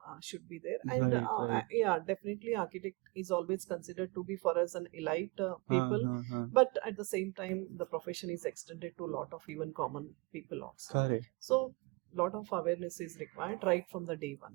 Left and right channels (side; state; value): left; quieter; 27.1 dB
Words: should be there, and Right, right. yeah, definitely architect is always considered to be for us an elite people, Huh. but at the same time the profession is extended to a lot of even common people also. Correct. So lot of awareness is required right from the day